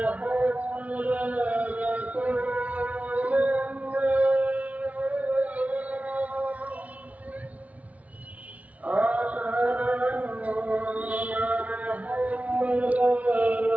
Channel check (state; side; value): late; left; 0.068 ms